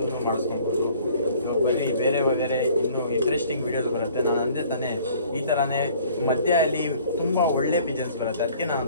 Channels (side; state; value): both; inverted; correlation -0.54